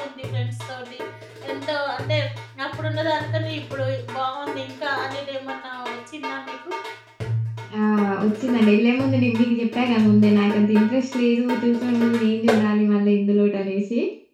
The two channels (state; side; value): identical; both; correlation 1.00